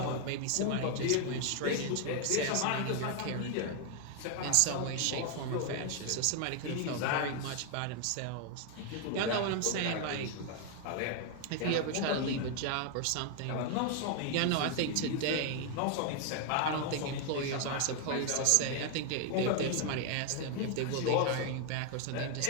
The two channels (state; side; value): different; both; correlation 0.01